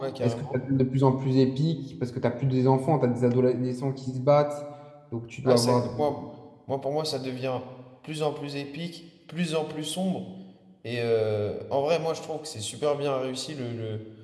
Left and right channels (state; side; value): identical; both; correlation 1.00